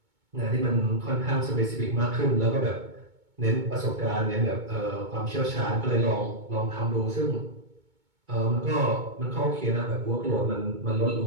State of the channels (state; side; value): late; left; 2.2 ms